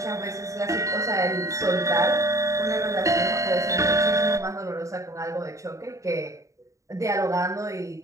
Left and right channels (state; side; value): late; left; 0.15 ms